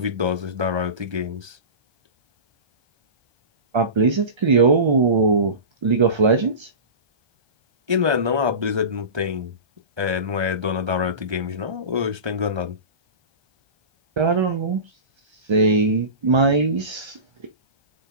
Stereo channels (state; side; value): late; left; 1.3 ms